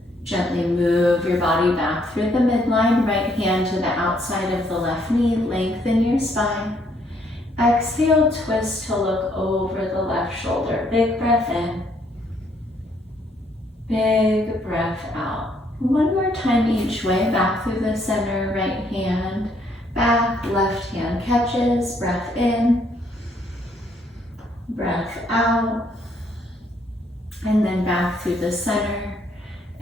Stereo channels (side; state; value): both; normal; correlation 0.69